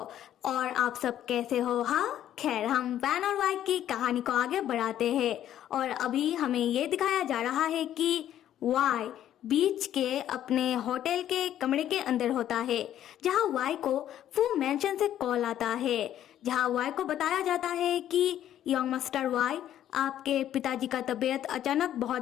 और आप सब कैसे हो? हाँ, खैर हम वैन और वाई की कहानी को आगे बढ़ाते हैं और अभी हमें ये दिखाया जा रहा है कि वाई बीच के अपने होटल के कमरे के अंदर होता है, जहाँ वाई को फू मैंशन से कॉल आता है, जहाँ वाई को बताया जाता है कि यंग मास्टर वाई, आपके पिताजी का तबीयत अचानक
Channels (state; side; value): quieter; right; 11.4 dB